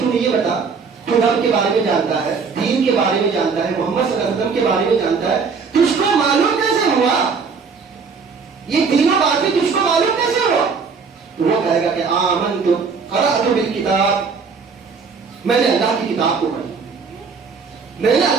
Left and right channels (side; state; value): left; quieter; 5.3 dB